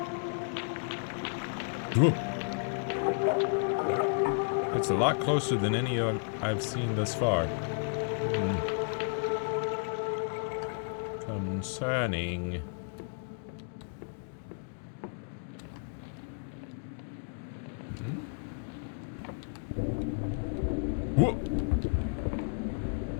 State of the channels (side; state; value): right; silent; digital silence